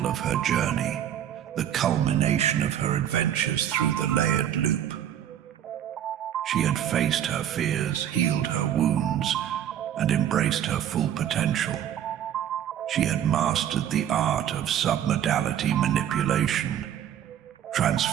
of her journey, the culmination of her adventures through the layered loop. She had faced her fears, healed her wounds, and embraced her full potential. She had mastered the art of submodality manipulation,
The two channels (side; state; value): left; quieter; 10.3 dB